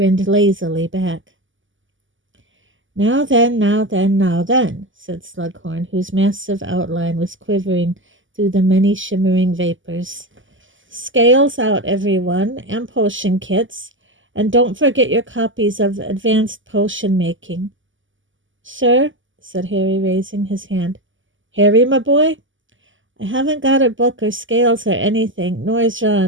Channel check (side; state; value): left; late; 0.57 ms